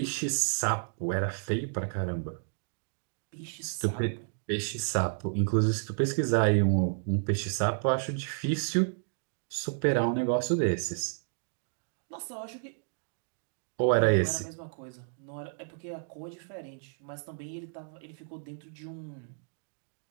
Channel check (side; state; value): left; silent; digital silence